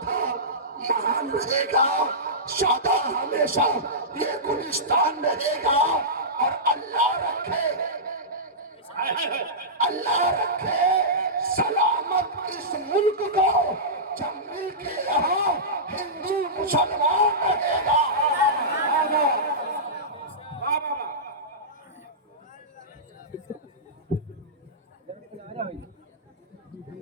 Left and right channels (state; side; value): normal; both; correlation -0.17